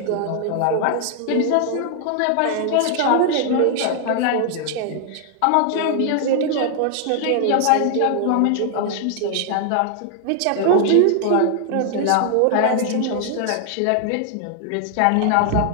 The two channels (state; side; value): different; both; correlation 0.00